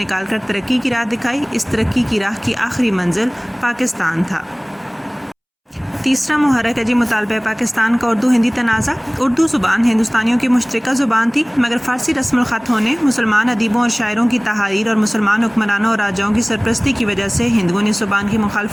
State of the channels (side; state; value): both; identical; correlation 1.00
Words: کر ترقی کی راہ دکھائی۔ اس ترقی کی راہ کی آخری منزل پاکستان تھا۔ تیسرا محرک ہے جی مطالبہ پاکستان کا اردو ہندی تنازع۔ اردو زبان ہندوستانیوں کی مشترکہ زبان تھی، مگر فارسی رسم الخط ہونے، مسلمان ادیبوں اور شاعروں کی تحاریر اور مسلمان حکمرانوں اور راجاؤں کی سرپرستی کی وجہ سے ہندوؤں نے زبان کی